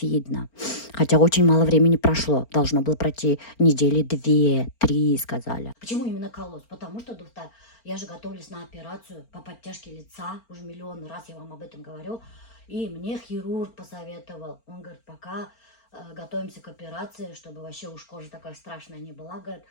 Хотя очень мало времени прошло. Должно было пройти недели 2-3, сказали. Почему именно колосс? Потому что, доктор, я же готовлюсь на операцию по подтяжке лица. Уже миллион раз я вам об этом говорю. И мне хирург посоветовал. Он говорит, пока готовимся к операции, чтобы вообще уж кожа такая страшная не была, говорит,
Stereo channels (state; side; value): late; right; 4.4 ms